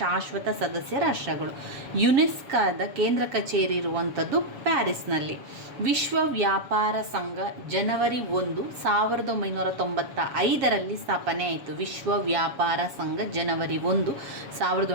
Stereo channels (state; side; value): late; left; 7.1 ms